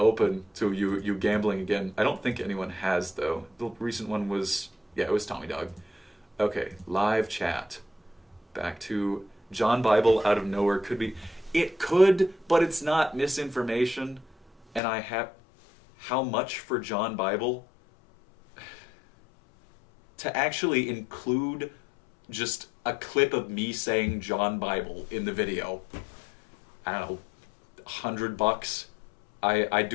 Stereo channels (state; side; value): drops out; right; at 14.8 s